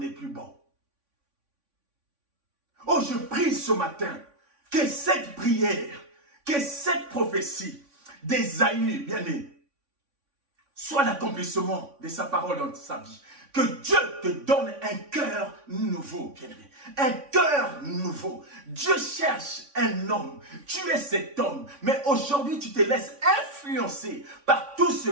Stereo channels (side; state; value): left; late; 3.5 ms